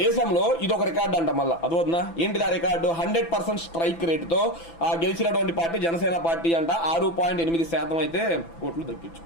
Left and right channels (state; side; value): late; right; 6.0 ms